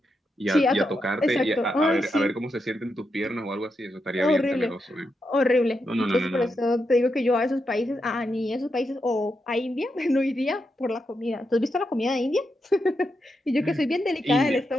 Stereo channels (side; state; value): both; normal; correlation 0.85